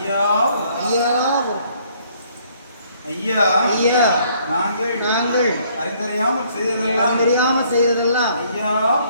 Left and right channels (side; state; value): both; inverted; correlation -0.64